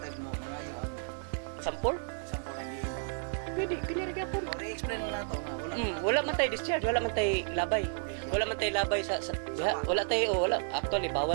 mo mangayo ang sample lang diin. pwede kini ra po. I-explain na nato nga wala man tay discharge, wala man tay labay. Wala man tay labay sa wala tay wala actually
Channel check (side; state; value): left; silent; digital silence